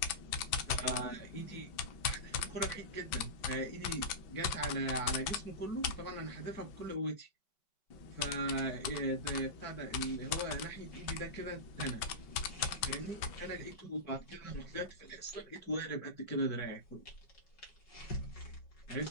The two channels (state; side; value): late; right; 5.3 ms